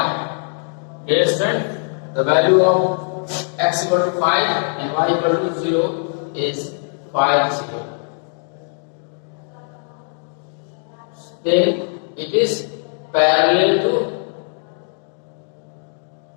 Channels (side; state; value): right; silent; 57 dB below the other